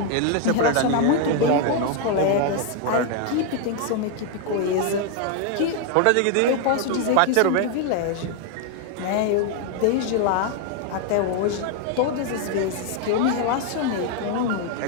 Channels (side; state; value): both; different; correlation 0.01